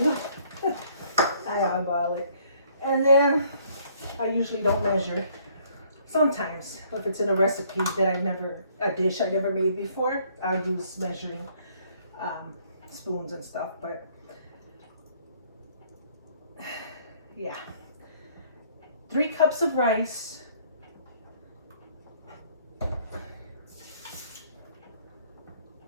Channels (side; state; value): both; inverted; correlation -0.63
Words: I eyeball it. And then I usually don't measure. Sometimes, if it's in a recipe that a dish I never made before, I use measuring spoons and stuff, but yeah. 3 cups of rice.